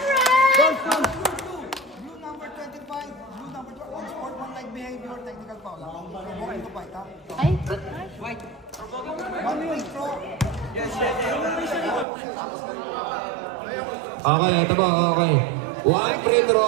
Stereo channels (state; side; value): drops out; left; at 12.1 s